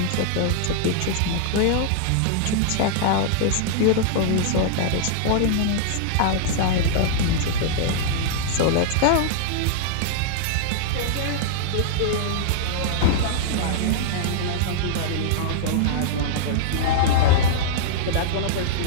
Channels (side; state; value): both; different; correlation -0.01